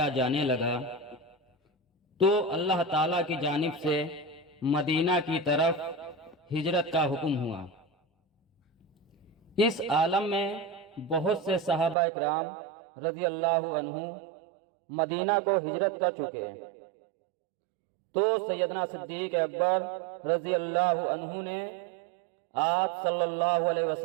جانے لگا تو اللہ تعالیٰ کی جانب سے مدینہ کی طرف ہجرت کا حکم ہوا۔ اس عالم میں بہت سے صحابہ اکرام رضی اللہ عنہ مدینہ کو ہجرت کر چکے، تو سیدنا صدیق اکبر رضی اللہ عنہ نے آپ صلی اللہ علیہ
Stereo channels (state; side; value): drops out; left; at 12.0 s